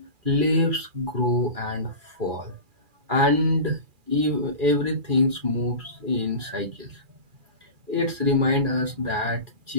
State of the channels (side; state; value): left; late; 2.4 ms